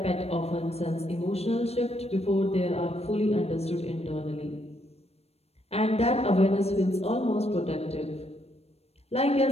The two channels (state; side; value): late; right; 0.30 ms